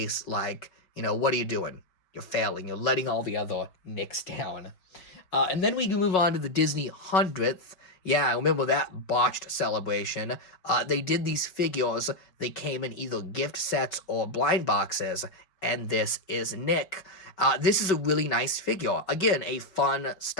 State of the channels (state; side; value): late; right; 5.3 ms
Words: what are you doing? You're failing. You're letting all the other Nicks down. And then we can move on to the Disney 100th. Yeah, I remember that botched celebration. They did these figures. They came in either gift sets or blind boxes, and this is Nick. This is a really nice figure. Again, a fun,